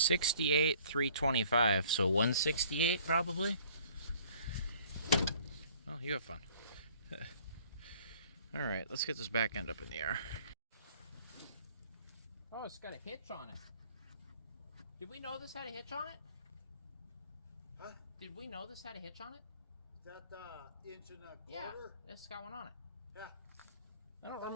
68, 325, so 168 probably. Oh, you have fun. All right, let's get this back end up in the air. Oh, it's got a hitch on it. Did we know this had a hitch on it? Huh? Did we know this had a hitch on it? Is that the inch and a quarter? Yeah, it's got one on it. Yeah. I don't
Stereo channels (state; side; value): inverted; both; correlation -0.55